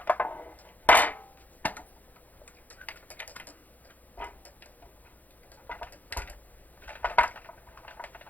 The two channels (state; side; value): late; right; 0.081 ms